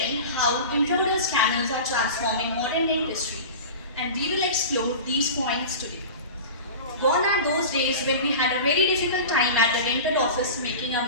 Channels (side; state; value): both; inverted; correlation -0.32